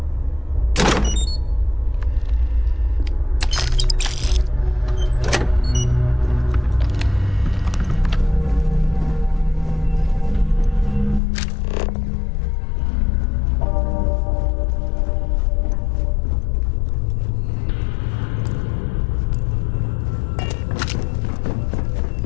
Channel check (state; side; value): drops out; right; at 11.2 s